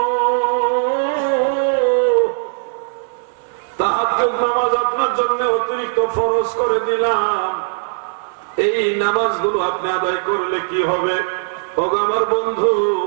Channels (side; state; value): left; silent; 61 dB below the other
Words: তাহাজ্জুদ নামাজ আপনার জন্য অতিরিক্ত ফরজ করে দিলাম। এই নামাজগুলো আপনি আদায় করলে কি হবে? ওগো আমার বন্ধু,